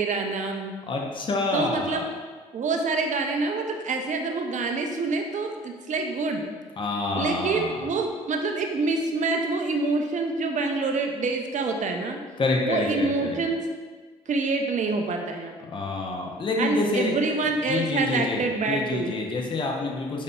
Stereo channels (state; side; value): normal; both; correlation 0.47